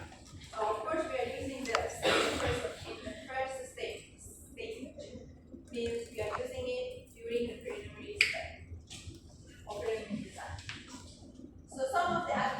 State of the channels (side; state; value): both; identical; correlation 1.00